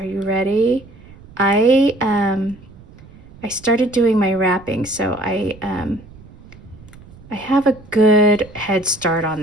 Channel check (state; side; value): noise; right; rumble, 21 dB below the sound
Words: you ready? I started doing my wrapping, so I have a good head start on